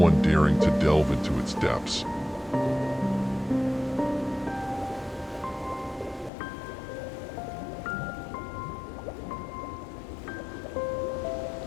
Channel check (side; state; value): right; drops out; at 6.3 s